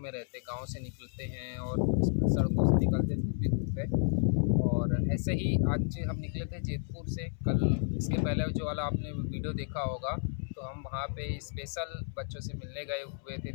रहते, गाँव से निकलते हैं और सड़कों से निकलते धूप ही धूप है। और ऐसे ही आज हम निकले थे जैतपुर से। कल इसके पहले जो वाला आपने वीडियो देखा होगा, तो हम वहाँ पे स्पेशल बच्चों से मिलने गए हुए थे,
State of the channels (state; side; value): silent; right; 57 dB below the other